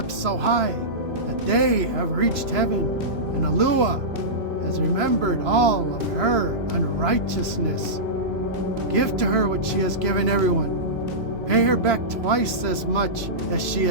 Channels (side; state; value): left; late; 3.0 ms